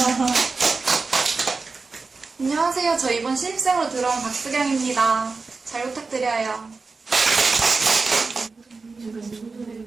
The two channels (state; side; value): quieter; left; 4.2 dB